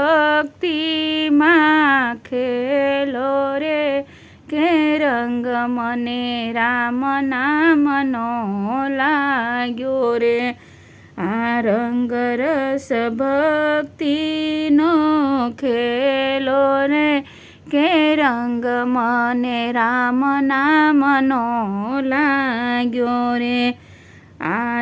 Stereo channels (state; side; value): identical; both; correlation 1.00